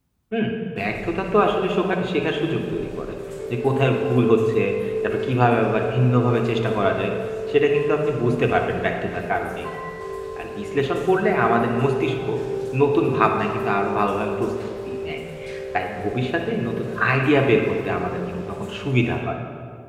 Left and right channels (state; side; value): identical; both; correlation 1.00